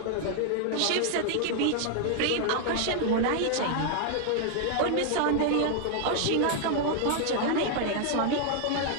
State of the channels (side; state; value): both; different; correlation 0.00